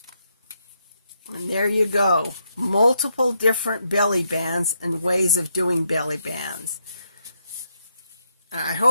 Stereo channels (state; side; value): inverted; both; correlation -0.79